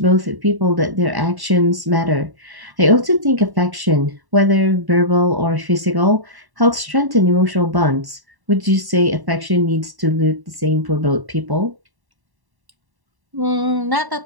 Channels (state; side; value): late; left; 1.1 ms